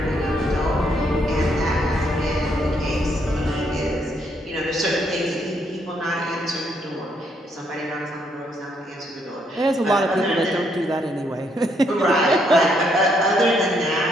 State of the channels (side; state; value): both; normal; correlation 0.73